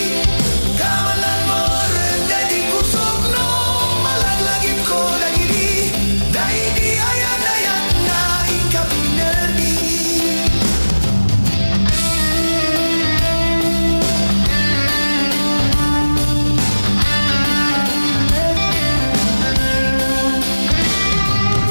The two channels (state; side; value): inverted; both; correlation -1.00